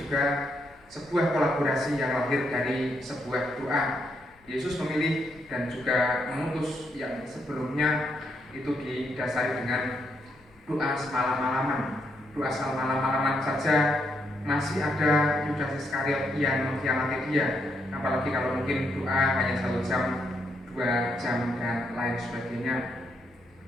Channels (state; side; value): normal; both; correlation 0.77